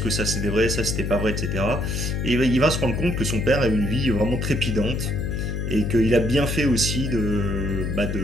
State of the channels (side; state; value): left; noise; hum, 2 dB below the sound